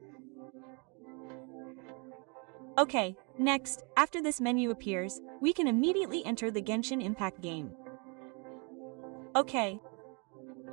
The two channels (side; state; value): left; quieter; 33.6 dB